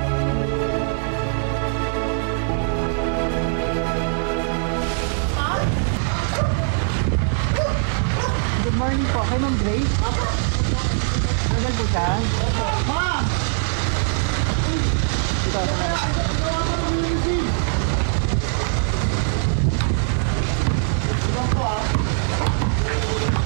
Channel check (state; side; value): silent; left; 65 dB below the other